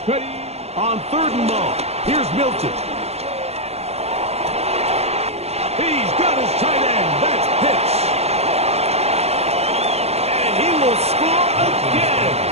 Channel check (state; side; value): late; left; 0.30 ms